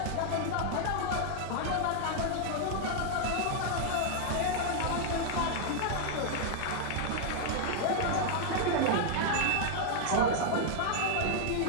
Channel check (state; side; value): different; both; correlation 0.00